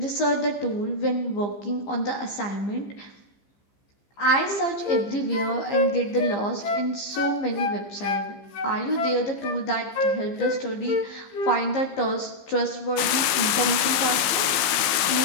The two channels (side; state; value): right; late; 15 ms